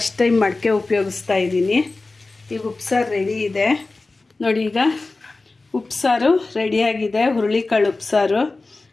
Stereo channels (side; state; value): right; quieter; 3.4 dB